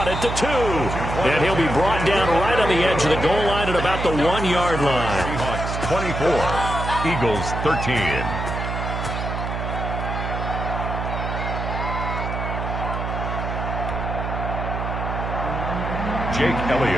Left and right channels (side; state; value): right; noise; hum, 4 dB below the sound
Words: at the 2. And he'll be brought down right on the edge of the goal line at about the 1-yard line. Seahawks 24. Eagles 13. Jake